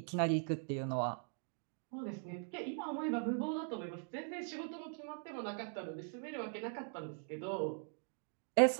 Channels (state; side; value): silent; left; 50 dB below the other